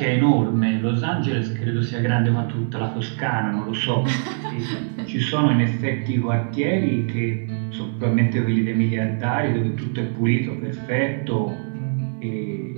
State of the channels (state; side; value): silent; left; digital silence